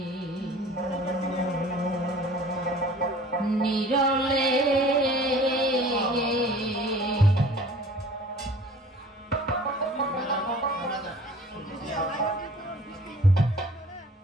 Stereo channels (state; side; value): normal; both; correlation 0.48